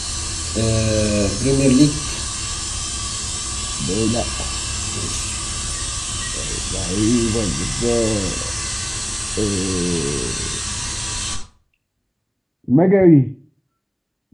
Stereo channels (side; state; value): both; identical; correlation 1.00